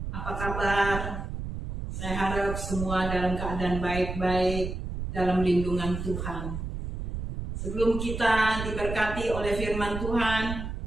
Apa kabar? Saya harap semua dalam keadaan baik-baik dalam lindungan Tuhan. Sebelum kita diberkati oleh firman Tuhan,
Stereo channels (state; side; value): noise; right; rumble, 5 dB below the sound